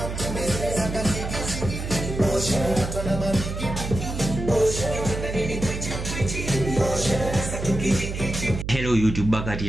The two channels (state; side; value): noise; right; hum, 5 dB below the sound